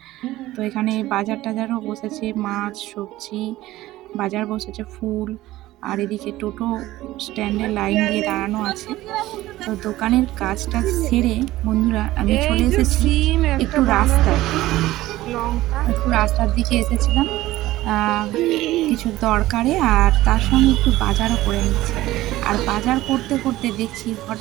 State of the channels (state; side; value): quieter; left; 16.4 dB